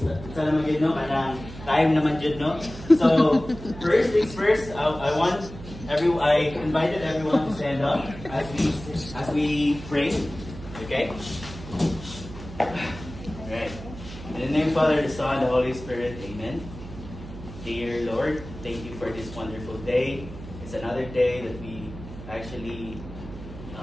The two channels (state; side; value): noise; right; hum, 13 dB below the sound